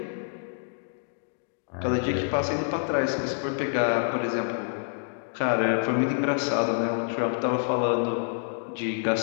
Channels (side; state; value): right; silent; digital silence